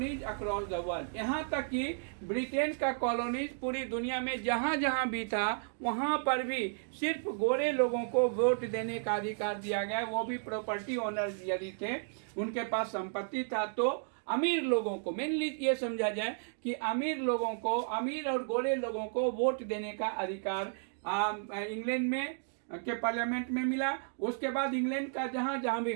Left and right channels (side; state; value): left; silent; digital silence